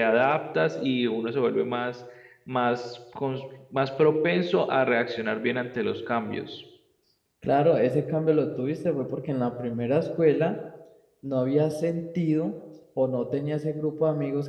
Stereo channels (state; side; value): identical; both; correlation 1.00